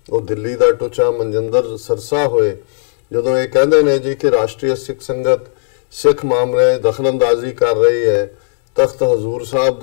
ਉਹ ਦਿੱਲੀ ਦਾ ਟੁੱਚਾ ਮਨਜਿੰਦਰ ਸਰਸਾ ਹੋਏ, ਜਦੋਂ ਇਹ ਕਹਿੰਦੇ ਨੇ ਜੀ ਕਿ ਰਾਸ਼ਟਰੀ ਸਿੱਖ ਸੰਗਤ ਸਿੱਖ ਮਾਮਲੇ ਦਖਲਅੰਦਾਜ਼ੀ ਕਰ ਰਹੀ ਹੈ, ਤਖਤ ਹਜ਼ੂਰ ਸਾਹਿਬ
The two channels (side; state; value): right; silent; digital silence